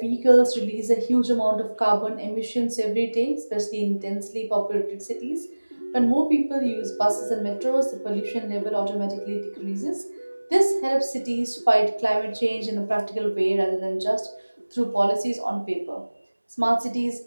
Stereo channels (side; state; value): both; inverted; correlation -1.00